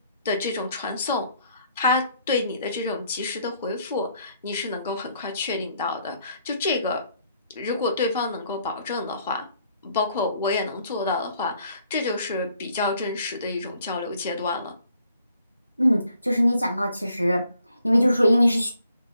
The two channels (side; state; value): both; inverted; correlation -0.67